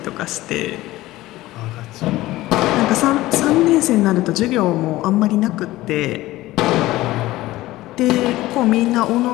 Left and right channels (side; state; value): right; quieter; 17.3 dB